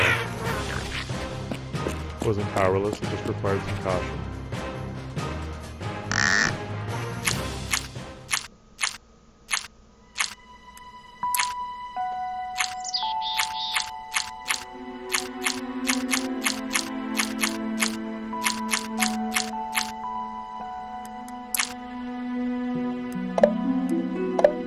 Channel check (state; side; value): identical; both; correlation 1.00